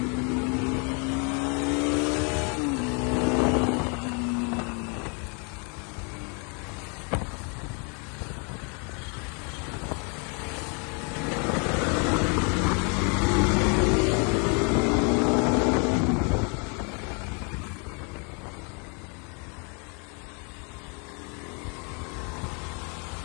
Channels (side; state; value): right; quieter; 36.1 dB